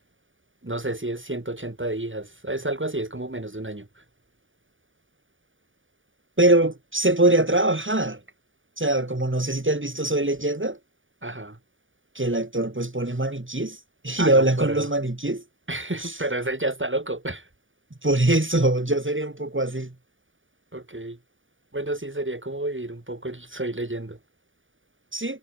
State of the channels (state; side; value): late; left; 0.57 ms